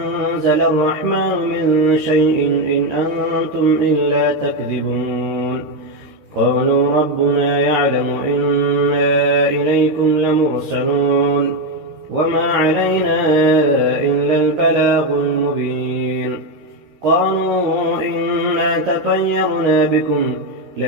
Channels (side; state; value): left; late; 13 ms